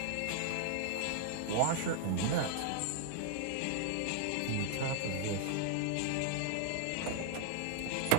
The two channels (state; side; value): different; both; correlation 0.00